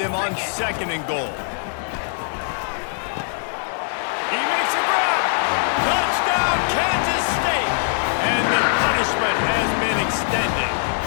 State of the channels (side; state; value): right; silent; 57 dB below the other